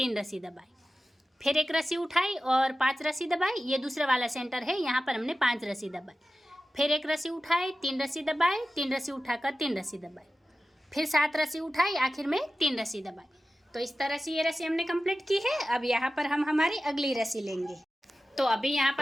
रस्सी दबाई, फिर एक रस्सी उठाई और 5 रस्सी दबाई, ये दूसरा वाला सेंटर है, यहाँ पर हमने 5 रस्सी दबाई, फिर एक रस्सी उठाई, 3 रस्सी दबाई, 3 रस्सी उठाकर 3 रस्सी दबाई, फिर 7 रस्सी उठाई, आखिर में 3 रस्सी दबाई। तो इस तरह से ये रस्सी हमने कंप्लीट की है। अब यहाँ पर हम हमारी अगली रस्सी लेंगे। तो अभी यहाँ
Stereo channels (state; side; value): normal; both; correlation 0.94